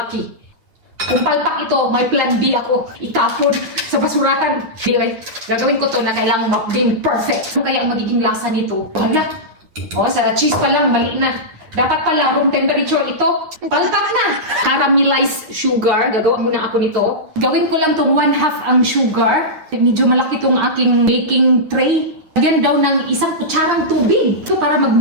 Kung palpak ito, may plan B ako. Itapon sa basurahan. Anyway, gagawin ko to na kailangan maging perfect. Ano kaya ang magiging lasa nito? Hala. O, sa cheese pa lang, mali na. Dapat pala, room temperature ito. Palpak na. Caramelized sugar. Gagawa muna ako nito. Gawin ko lang tong 1/2 ang sugar. Medyo malaki tong aking baking tray. Lagyan daw ng isang kutsarang tubig. Ito para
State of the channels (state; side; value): late; left; 9.4 ms